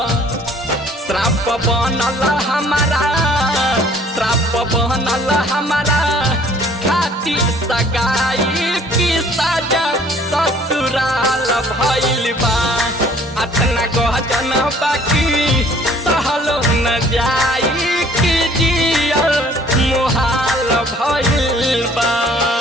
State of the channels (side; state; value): both; normal; correlation 0.56